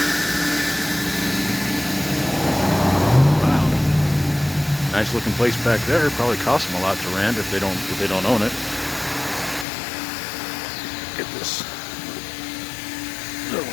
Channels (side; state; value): right; drops out; at 9.7 s